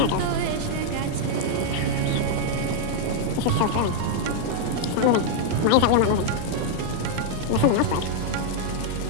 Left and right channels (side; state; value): both; different; correlation 0.00